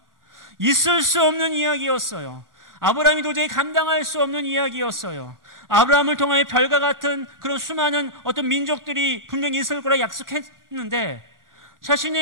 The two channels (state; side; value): late; left; 1.4 ms